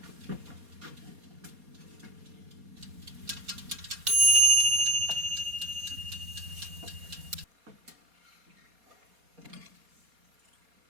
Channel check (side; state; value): left; late; 4.2 ms